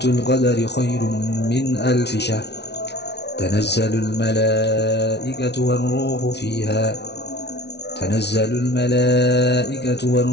القدر خير من ألف شهر تنزل الملائكة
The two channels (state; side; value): late; right; 0.50 ms